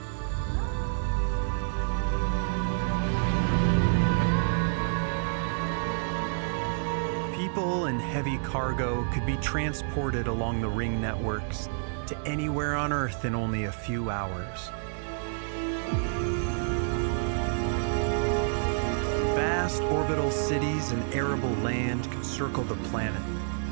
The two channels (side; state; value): left; silent; digital silence